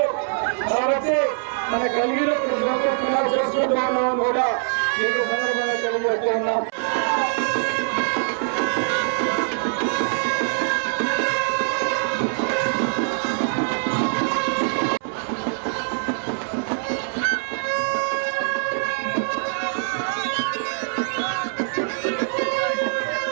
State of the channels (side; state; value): left; silent; 63 dB below the other